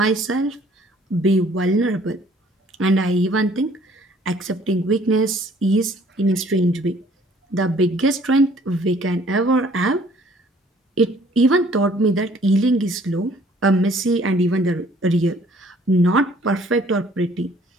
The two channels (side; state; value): both; normal; correlation 0.58